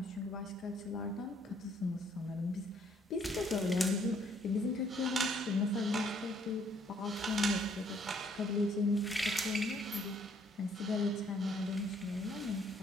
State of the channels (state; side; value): normal; both; correlation 0.65